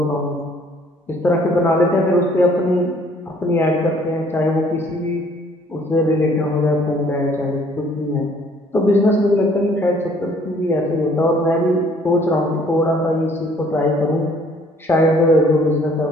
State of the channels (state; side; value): normal; both; correlation 0.59